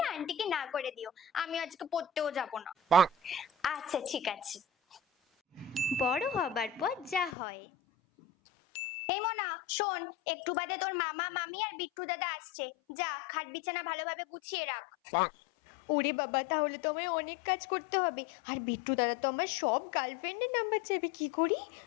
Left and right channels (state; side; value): drops out; right; at 7.4 s